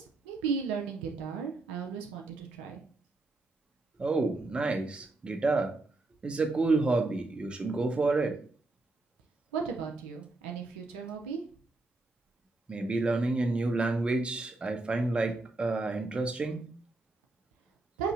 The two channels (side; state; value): left; quieter; 3.1 dB